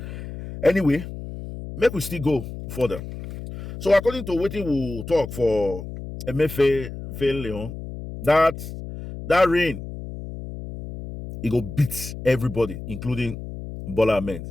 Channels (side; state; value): left; noise; hum, 10 dB below the sound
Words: Anyway, make we still go further. So according to what we will talk for Emefiele, that rain, it go beat everybody, including Bola Ahmed